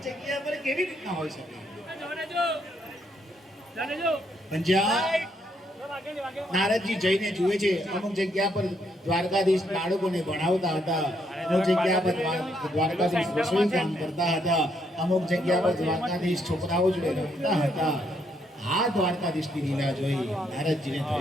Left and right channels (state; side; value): normal; both; correlation 0.74